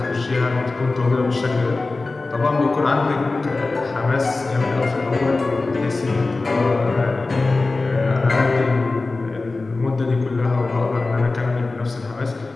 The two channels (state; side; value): quieter; right; 3.5 dB